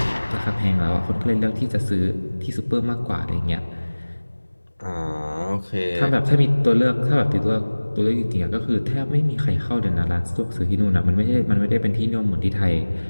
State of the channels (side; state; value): both; inverted; correlation -1.00